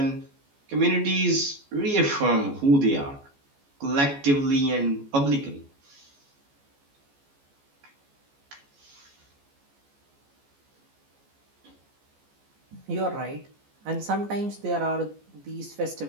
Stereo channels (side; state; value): left; late; 14 ms